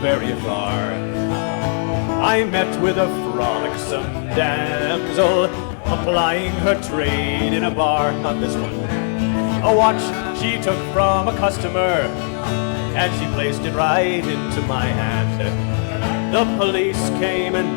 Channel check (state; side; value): silent; right; 66 dB below the other